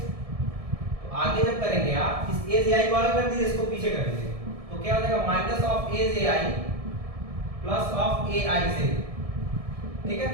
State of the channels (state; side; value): late; left; 1.6 ms